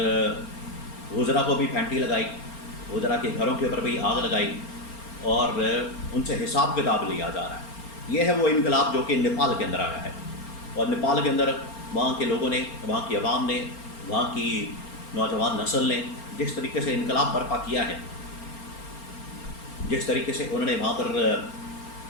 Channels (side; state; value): right; late; 4.3 ms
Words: वज़रा को भी फैंटी लगाई, वज़रा के घरों के ऊपर भी आग लगाई और उनसे हिसाब किताब लिया जा रहा है। ये है वो इनकलाब जो कि नेपाल के अंदर आया है। और नेपाल के अंदर वहाँ के लोगों ने, वहाँ की आवाम ने, वहाँ की नौजवान नस्ल ने जिस तरीके से इनकलाब बर्पा किया है, जिस तरीके से उन्होंने वहाँ पर